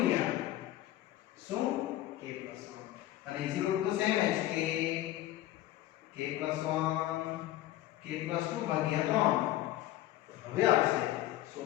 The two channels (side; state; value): right; quieter; 14.6 dB